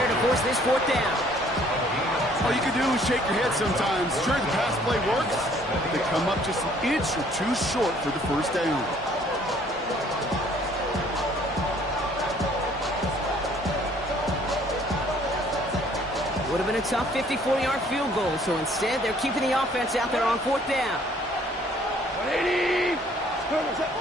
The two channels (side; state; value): both; normal; correlation 0.60